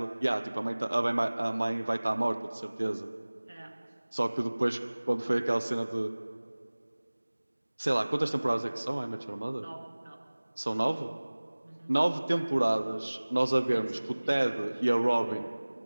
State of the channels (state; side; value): inverted; both; correlation -1.00